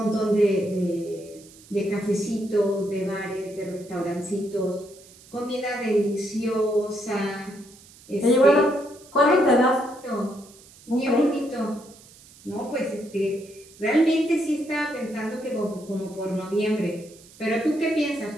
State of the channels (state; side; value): noise; right; hiss, 23 dB below the sound